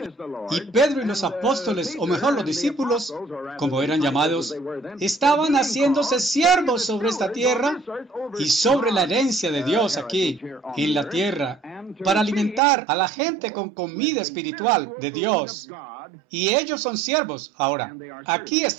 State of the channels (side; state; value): left; drops out; at 12.6 s